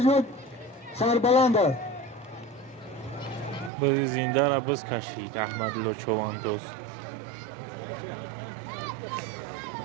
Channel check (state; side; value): drops out; left; at 3.7 s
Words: سربلند است. بزی زنده را بز کشید احمدلو چواندوز.